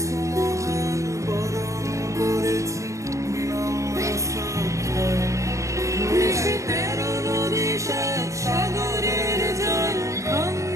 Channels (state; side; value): late; left; 0.15 ms